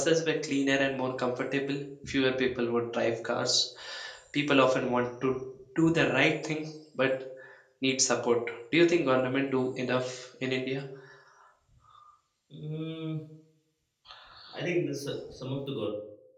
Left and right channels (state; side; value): identical; both; correlation 1.00